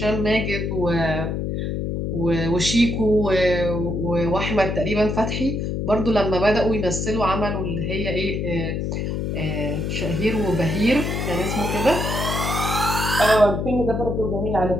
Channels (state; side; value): noise; left; hum, 2 dB below the sound